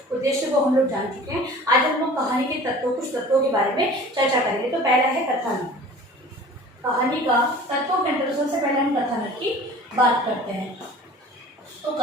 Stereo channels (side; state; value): both; normal; correlation 0.44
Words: उद्देश्य को हम लोग जान चुके हैं। आज हम लोग कहानी के तत्वों, कुछ तत्वों के बारे में चर्चा करेंगे। तो पहला है कथानक। कहानी का तत्वों के अंतर्गत सबसे पहले हम कथानक की बात करते हैं। तो